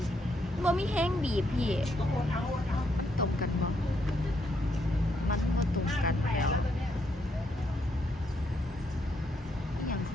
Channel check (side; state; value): both; normal; correlation 0.76